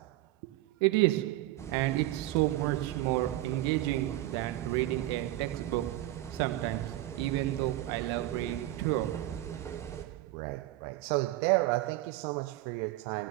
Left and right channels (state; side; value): quieter; left; 15.8 dB